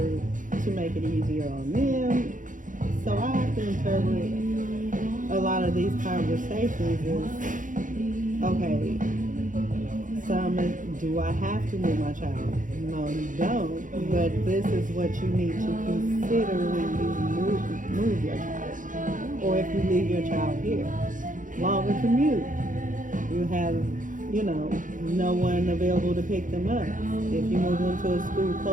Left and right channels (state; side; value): late; left; 0.38 ms